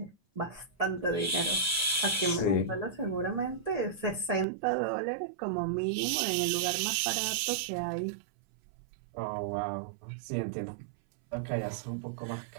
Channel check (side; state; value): left; drops out; at 4.5 s